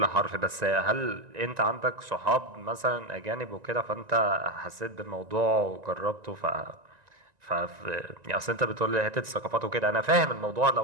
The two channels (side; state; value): left; late; 1.9 ms